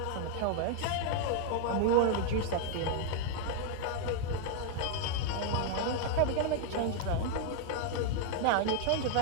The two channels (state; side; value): different; both; correlation 0.00